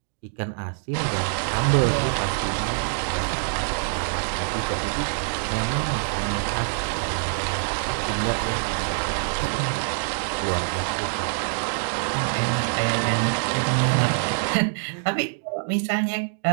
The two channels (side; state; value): left; silent; digital silence